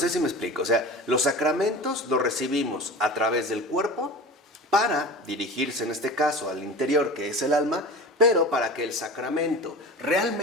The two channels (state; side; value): normal; both; correlation 0.34